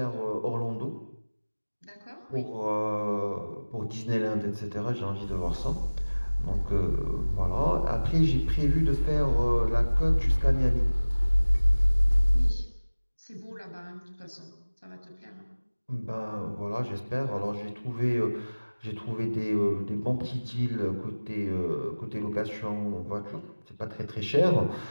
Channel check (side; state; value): both; inverted; correlation -1.00